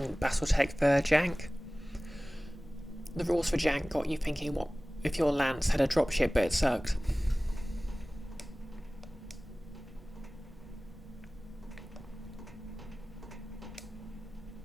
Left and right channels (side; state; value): both; normal; correlation 0.98